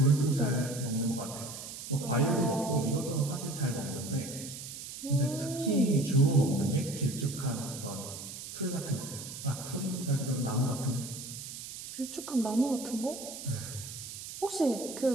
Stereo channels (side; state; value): right; noise; hiss, 10 dB below the sound